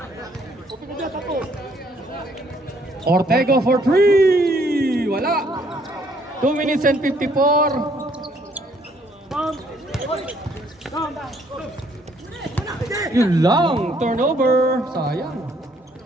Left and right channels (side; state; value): both; normal; correlation 0.66